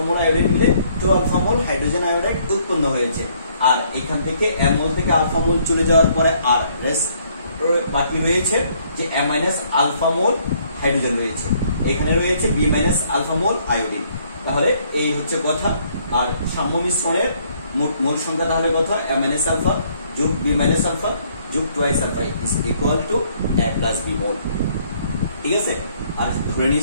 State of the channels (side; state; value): both; inverted; correlation -0.66